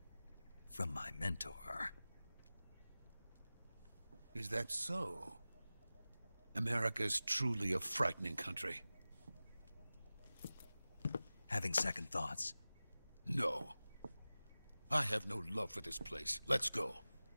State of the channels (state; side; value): inverted; both; correlation -0.97